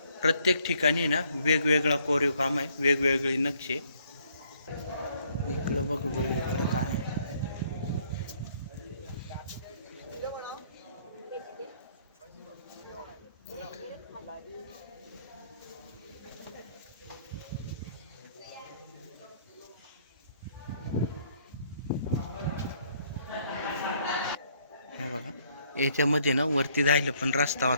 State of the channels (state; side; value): inverted; both; correlation -0.66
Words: प्रत्येक ठिकाणी ना वेगवेगळा कोरीव काम आहे वेगवेगळी नक्षी इकडं बघू बरं इकडं काय हे बघा याच्यामध्ये ना वरती जायला पण रस्ता